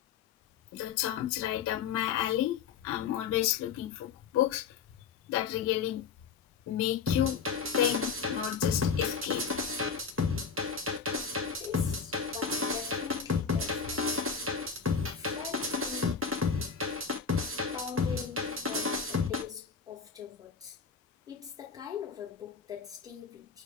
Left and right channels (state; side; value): quieter; right; 6.3 dB